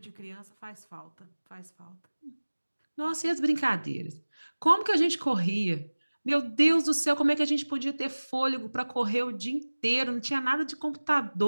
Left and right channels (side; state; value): both; inverted; correlation -1.00